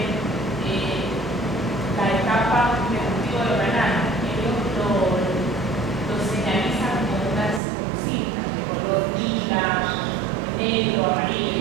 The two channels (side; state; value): left; drops out; at 7.6 s